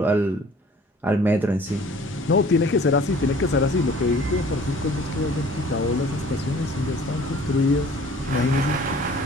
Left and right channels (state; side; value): normal; both; correlation 0.51